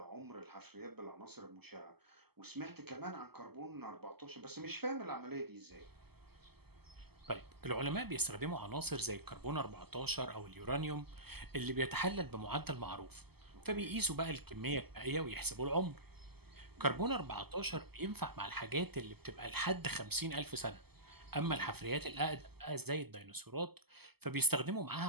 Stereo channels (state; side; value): late; left; 0.96 ms